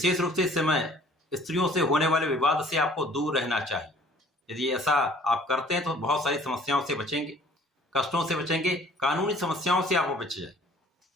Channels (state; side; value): normal; both; correlation 0.54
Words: रूप से इस समय स्त्रियों से होने वाले विवाद से आपको दूर रहना चाहिए। यदि ऐसा आप करते हैं तो बहुत सारी समस्याओं से बचेंगे, कष्टों से बचेंगे, कानूनी समस्याओं से आप बच जाए।